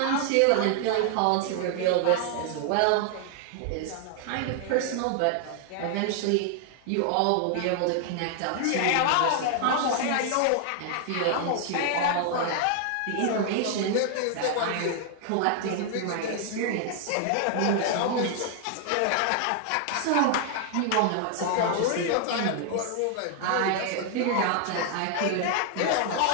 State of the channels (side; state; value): both; different; correlation 0.00